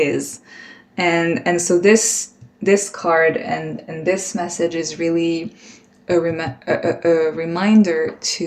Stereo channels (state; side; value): identical; both; correlation 1.00